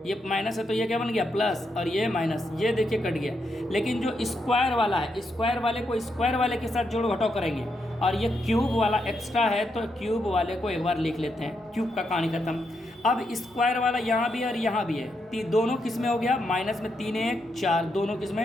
है तो ये क्या बन गया प्लस, और ये माइनस, ये देखिए कट गया। लेकिन जो स्क्वायर वाला है, स्क्वायर वाले को स्क्वायर वाले के साथ जोड़ घटाव करेंगे, और ये क्यूब वाला एक्स्ट्रा है तो क्यूब वाले को एक बार लिख लेते हैं, क्यूब का कहानी खत्म। अब स्क्वायर वाला यहाँ भी है और यहाँ भी है, दोनों किस में हो गया, माइनस में 3 1 4, दोनों किस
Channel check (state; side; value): normal; both; correlation 0.81